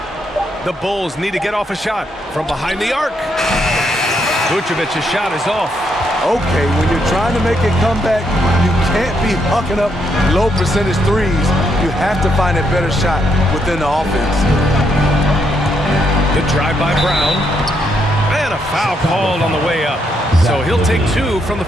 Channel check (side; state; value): both; normal; correlation 0.76